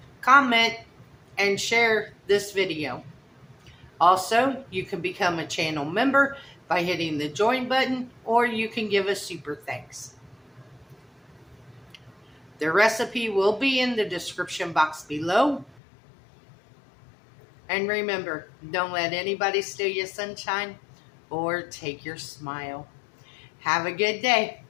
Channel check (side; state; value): right; drops out; at 15.8 s